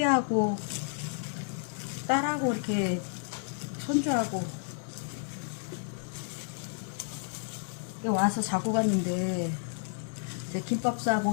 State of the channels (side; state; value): right; silent; digital silence